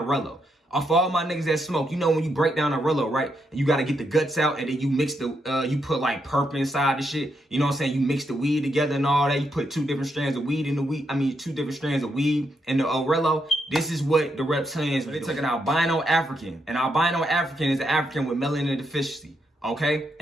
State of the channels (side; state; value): both; normal; correlation 0.80